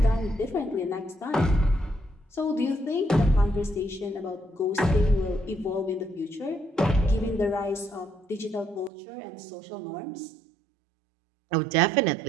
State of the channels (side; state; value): left; drops out; at 8.9 s